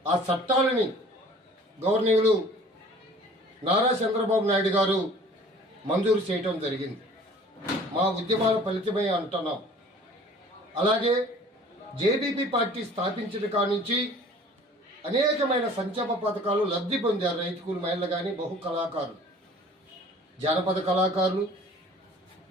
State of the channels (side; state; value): both; normal; correlation 0.49